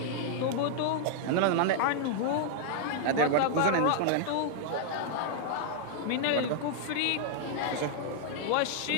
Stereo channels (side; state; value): both; different; correlation -0.01